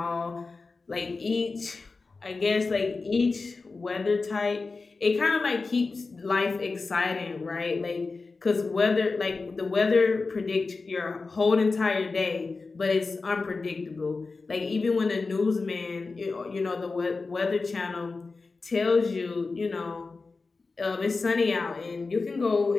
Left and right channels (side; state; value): right; quieter; 4.0 dB